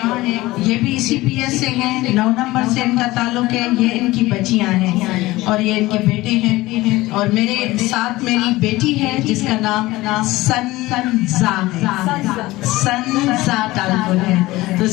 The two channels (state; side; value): quieter; right; 18.8 dB